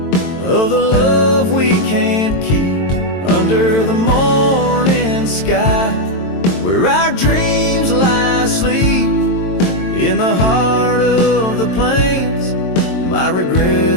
the love we can't keep. Under the morning sky, where our dreams lie asleep, in the heart of the plains, my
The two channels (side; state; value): right; late; 22 ms